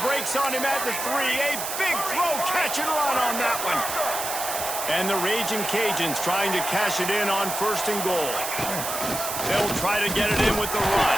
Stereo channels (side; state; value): right; noise; hiss, 4 dB below the sound